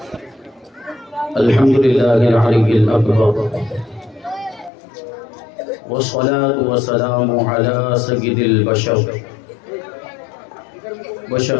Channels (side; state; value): right; drops out; at 4.7 s